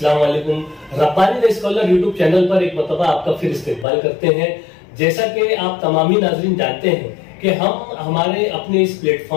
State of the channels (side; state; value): right; drops out; at 3.9 s